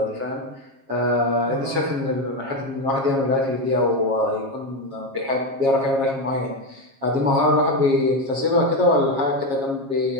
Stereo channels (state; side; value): late; left; 7.4 ms